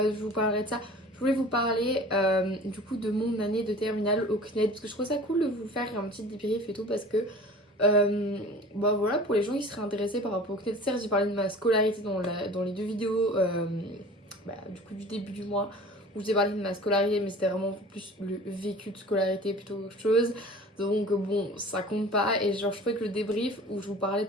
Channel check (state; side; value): normal; both; correlation 0.42